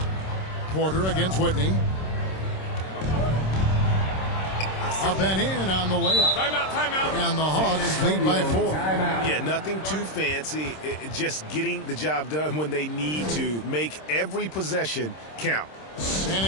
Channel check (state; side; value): late; right; 26 ms